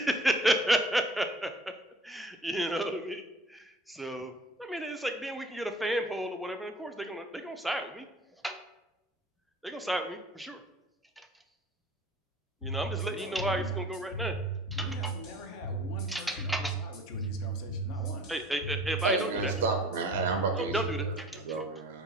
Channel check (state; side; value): normal; both; correlation 0.45